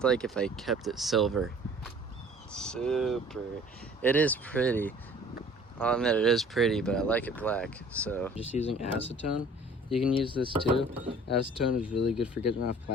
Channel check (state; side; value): normal; both; correlation 0.51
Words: like if I kept it silver. Super. It is pretty. I'll admit it is pretty, but I like it black. So just using acetone. You can use this too. Acetone is really good for getting off